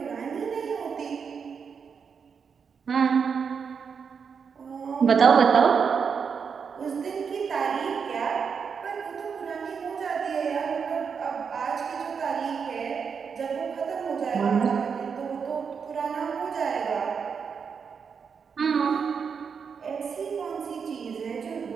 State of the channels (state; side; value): quieter; left; 6.2 dB